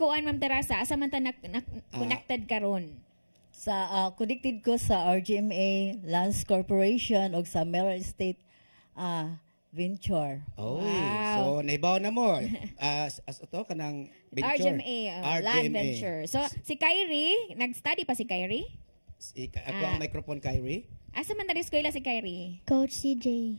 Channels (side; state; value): both; inverted; correlation -1.00